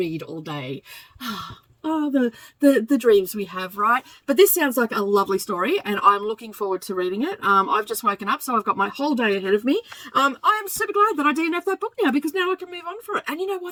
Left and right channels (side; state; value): both; identical; correlation 1.00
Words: all day. Oh, the dreams we have, right? But this sounds like a lovely story, and I'm looking forward to reading it. I've just woken up, so I've got my whole day ahead of me. I am super glad that I DNF'd that book now, because now I can move on for it. And you know